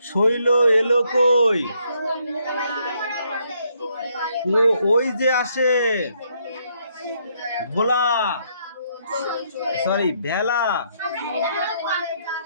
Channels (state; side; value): inverted; both; correlation -0.72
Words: শৈল এলো কই? ও ওই যে আসে ভোলা, সরি ভেলা